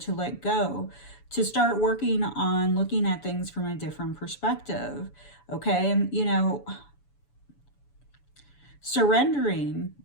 let go, to start working on looking at things from a different perspective, okay? And, you know, surrendering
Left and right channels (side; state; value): right; late; 7.0 ms